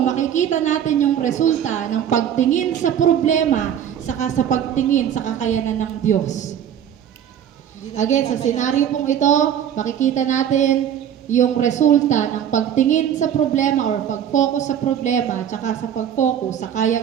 natin yung resulta ng pagtingin sa problema saka sa pagtingin sa kakayanan ng Diyos. Again, sa senaryo pong ito, makikita natin yung resulta ng pagtingin sa problema or pag-focus sa problema at saka sa pag-focus sa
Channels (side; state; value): left; quieter; 9.5 dB